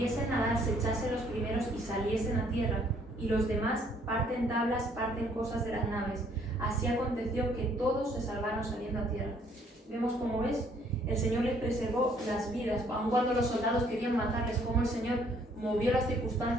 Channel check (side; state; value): both; normal; correlation 0.64